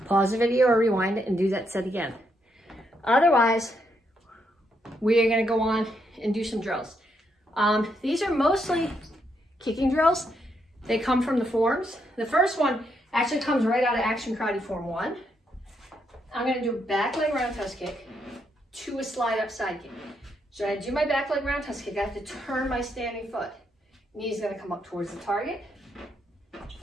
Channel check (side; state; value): both; normal; correlation 0.77